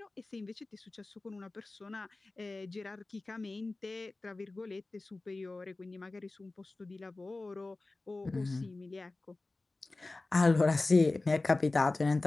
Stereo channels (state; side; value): quieter; right; 3.2 dB